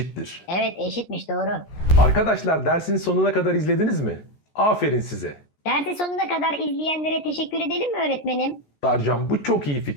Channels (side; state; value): right; late; 14 ms